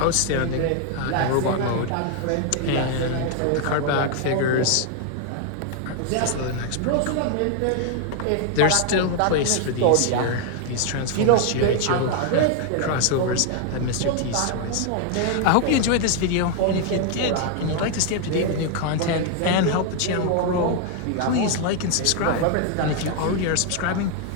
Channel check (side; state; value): both; different; correlation 0.00